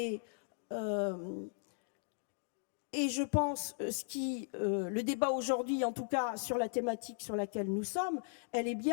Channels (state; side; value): silent; right; digital silence